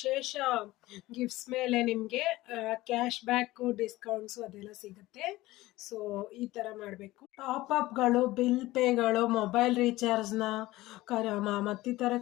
ಗಿಫ್ಟ್ಸ್ ಮೇಲೆ ನಿಮಗೆ ಕ್ಯಾಶ್ ಬ್ಯಾಕು, ಡಿಸ್ಕೌಂಟ್ಸು ಅದೆಲ್ಲ ಸಿಗುತ್ತೆ. ಸೊ ಈ ಥರ ಮಾಡಬೇಕು. ಟಾಪಪ್ಗಳು, ಬಿಲ್ ಪೇಗಳು, ಮೊಬೈಲ್ ರೀಚಾರ್ಜ್ನ ಮತ್ತಿತರ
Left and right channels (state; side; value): quieter; right; 18.1 dB